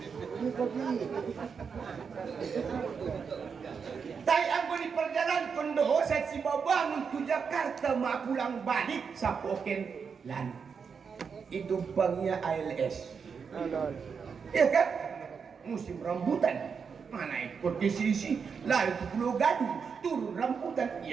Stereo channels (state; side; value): quieter; left; 6.1 dB